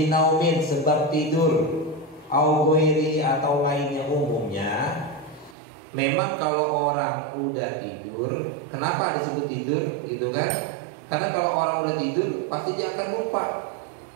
sebab tidur, au ghairi atau lainnya. Umumnya memang kalau orang udah tidur, kenapa disebut tidur gitu kan? Karena kalau orang udah tidur pasti dia akan lupa.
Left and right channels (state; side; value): drops out; left; at 5.6 s